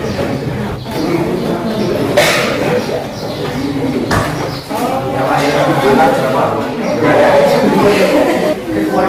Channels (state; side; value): identical; both; correlation 1.00